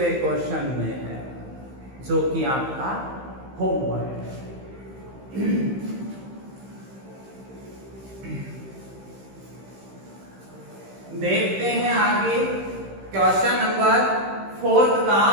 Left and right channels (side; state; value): left; late; 15 ms